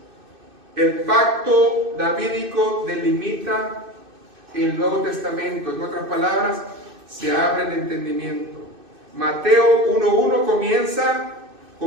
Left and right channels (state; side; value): late; left; 2.6 ms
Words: el pacto davídico delimita el Nuevo Testamento. En otras palabras, se abre el entendimiento. Mateo 1:1 comienza